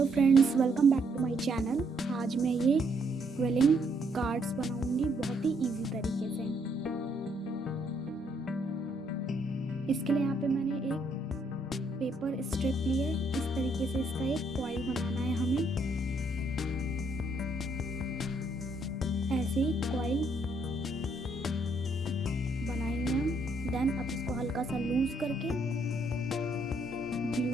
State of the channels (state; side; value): normal; both; correlation 0.71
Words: friends, welcome back to my channel. आज मैं ये क्विलिंग कार्ड्स बनाऊंगी बहुत ही इजी तरीके से। इसके लिए यहाँ पे मैंने एक पेपर स्ट्रिप ली है। इस तरीके से इसका एक फॉइल बनाना है हमें। ऐसे ही कॉइल बनाएंगे हम। देन अब इसको हल्का सा लूज करके